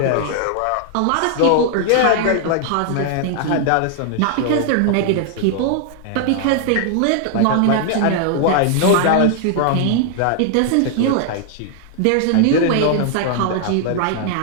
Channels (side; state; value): both; different; correlation 0.00